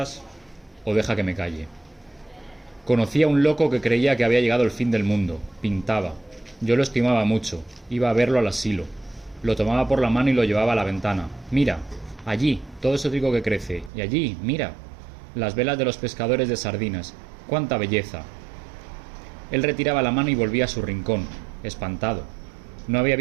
o deja que me calle. Conocí a un loco que creía que había llegado el fin del mundo. Pintaba. Yo lo estimaba mucho. Iba a verlo al asilo. Lo tomaba por la mano y lo llevaba a la ventana. Mira, allí, todo ese trigo que crece. Y allí, mira, las velas de los pescadores de sardinas. ¡Cuánta belleza! Él retiraba la mano y volvía a su rincón, espantado. No había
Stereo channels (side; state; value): left; drops out; at 13.9 s